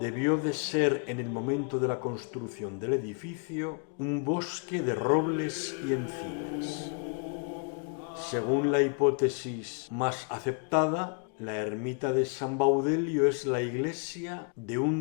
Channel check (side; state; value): right; quieter; 38.9 dB